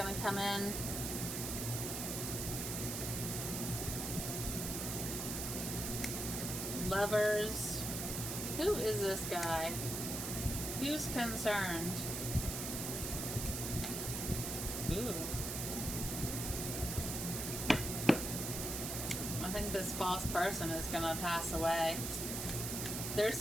come in. Lovers. Who is this guy? Who's concerned? Ooh. I think this false person is gonna pass away. They're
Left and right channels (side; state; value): right; noise; hiss, 3 dB below the sound